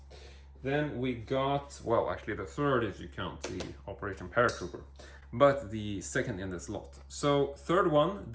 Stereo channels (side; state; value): both; identical; correlation 1.00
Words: Then we got, well, actually the third if you count the Operation Paratrooper, but the second in this lot. So third one,